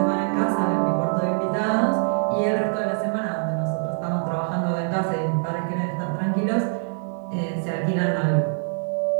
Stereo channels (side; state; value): left; silent; 61 dB below the other